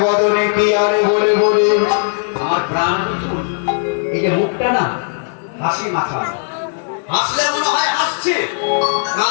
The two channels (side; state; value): right; silent; 63 dB below the other